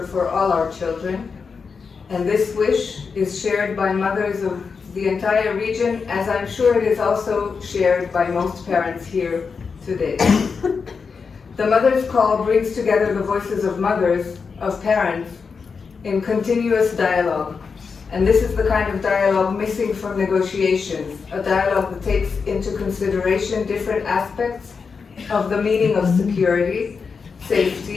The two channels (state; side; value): quieter; right; 5.3 dB